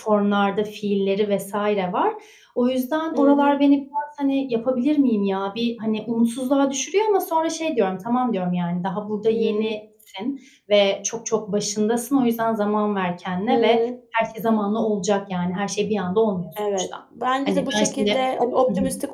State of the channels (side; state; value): both; identical; correlation 1.00